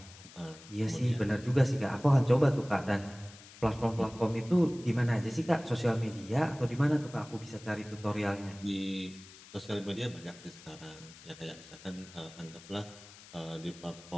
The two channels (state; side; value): noise; left; hiss, 19 dB below the sound